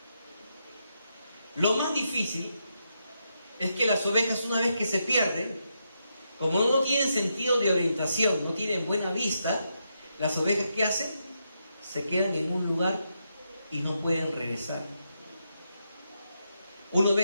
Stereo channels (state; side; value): inverted; both; correlation -0.82